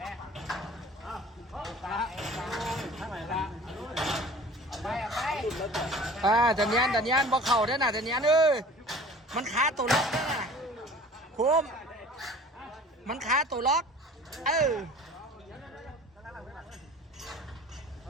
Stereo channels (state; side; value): normal; both; correlation 0.45